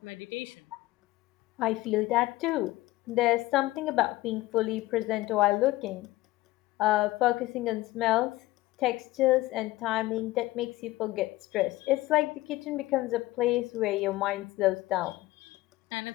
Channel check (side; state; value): right; quieter; 18.1 dB